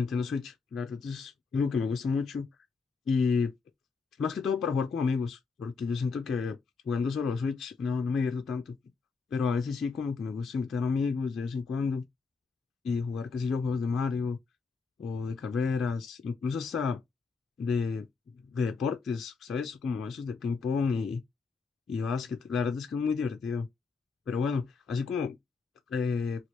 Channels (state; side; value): quieter; right; 4.8 dB